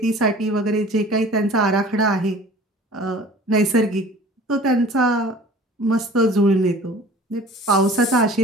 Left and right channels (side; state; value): both; normal; correlation 0.45